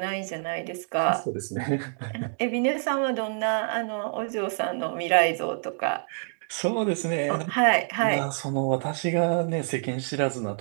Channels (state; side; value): silent; left; digital silence